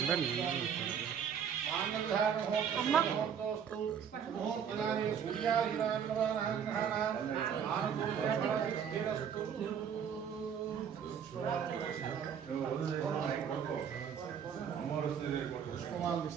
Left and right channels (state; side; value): quieter; left; 7.9 dB